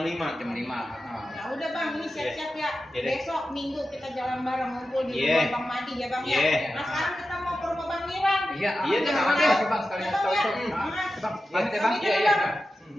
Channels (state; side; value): normal; both; correlation 0.92